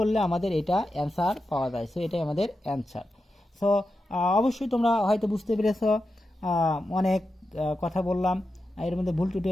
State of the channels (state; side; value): normal; both; correlation 0.90